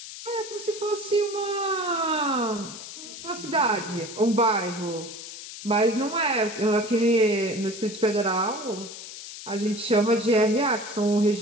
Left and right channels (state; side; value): noise; left; hiss, 12 dB below the sound